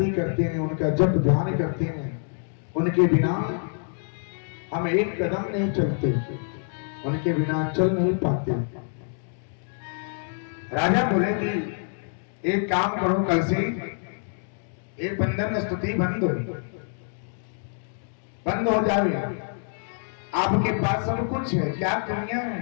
करते हैं, उनका जप ध्यान करते हैं, उनके बिना हम एक कदम नहीं चलते, उनके बिना चल नहीं पाते। राजा बोले कि एक काम करो, कल से ये बंधन स्तुति बंद हो जाए। आपके पास सब कुछ है, क्या कमियां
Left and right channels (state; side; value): silent; right; 61 dB below the other